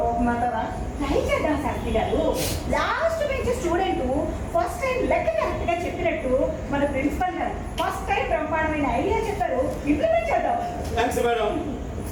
ట్రై చేద్దాం శాస్త్రి గారు. Last bench student first time లెక్క కరెక్ట్ గా చెప్పినట్టు మన ప్రిన్సిపల్ గారు ఫస్ట్ టైం బ్రహ్మాండమైన ఐడియా చెప్పారు, ఇంప్లిమెంట్ చేద్దాం. Thanks madam.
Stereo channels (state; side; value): identical; both; correlation 1.00